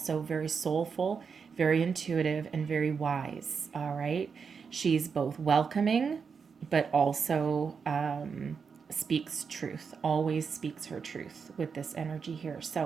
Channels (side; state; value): left; quieter; 5.9 dB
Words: very soulful, very intuitive, and very wise. All right. She's both welcoming, but also speaks truth, always speaks her truth with this energy here.